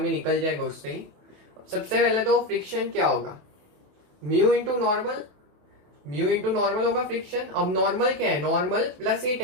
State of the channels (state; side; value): late; left; 27 ms